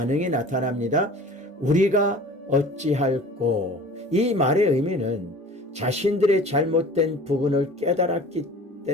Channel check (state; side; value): normal; both; correlation 0.43